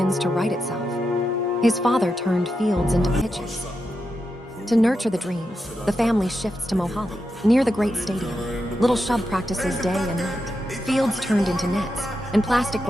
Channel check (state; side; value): normal; both; correlation 0.87